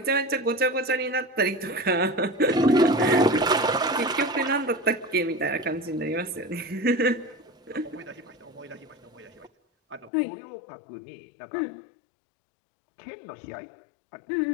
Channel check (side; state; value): right; drops out; at 10.1 s